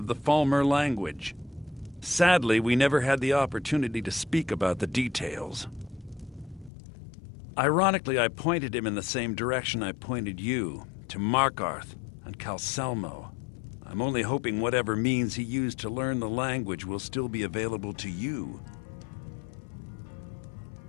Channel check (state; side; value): drops out; right; at 6.7 s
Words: the Falmer language. Sadly, we never had the opportunity to speak about the details. Ironically, I pointed him in the same direction I pointed you, to Markarth and Calselmo. I'm only hoping whatever means he used to learn the language will still be available to you.